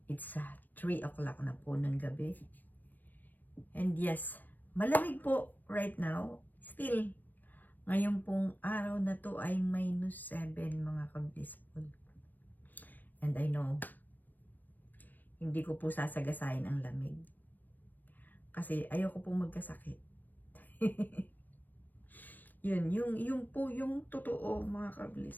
it's 3 o'clock na po ng gabi. And yes, malamig po right now. Still, ngayon pong araw na to ay -7 mga ka-blissful. And I know, hindi ko po sasagasayin ang lamig. Kasi ayoko pong magkasakit. Yung po yung totoo mga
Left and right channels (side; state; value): right; late; 0.085 ms